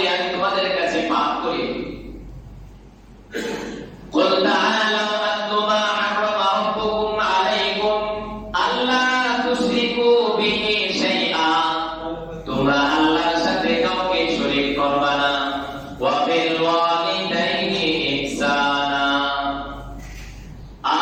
আমি তোমাদের কাছে পাঠ করি। কুল তাআলাউ আতলু মা হাররামা রাব্বুকুম আলাইকুম আল্লা তুশরিকু বিহি শাইআ, তোমরা আল্লাহর সাথে কাউকে শরীক করবে না। ওয়া বিল ওয়ালিদাইনি ইহসানা,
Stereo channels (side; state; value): both; identical; correlation 1.00